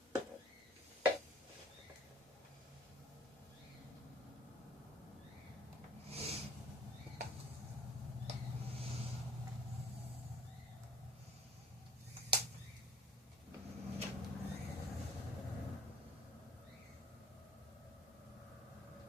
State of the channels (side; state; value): both; normal; correlation 0.51